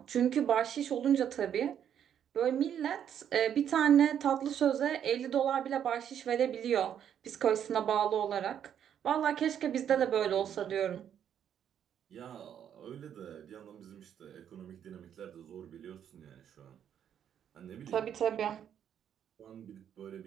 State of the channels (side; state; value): left; quieter; 9.2 dB